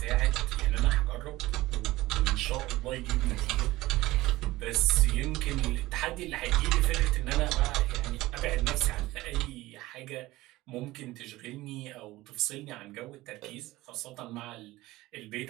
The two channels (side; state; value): left; quieter; 18.3 dB